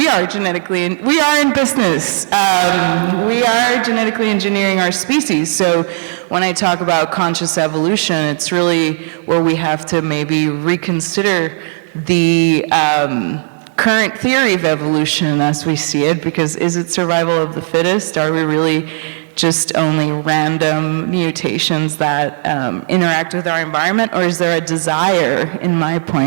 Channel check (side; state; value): left; silent; digital silence